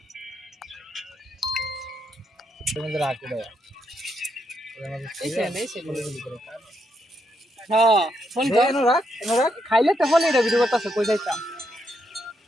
তোমাদের রাখো দে হ্যাঁ ফোন এনো রাখ খাইলে তো ফোন এটা ভিডিও করতেছে কই যাইতাম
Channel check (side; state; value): both; normal; correlation 0.79